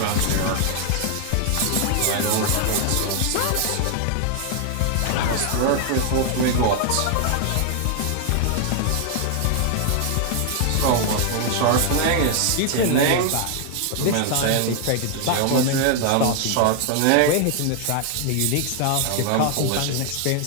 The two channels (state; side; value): different; both; correlation 0.00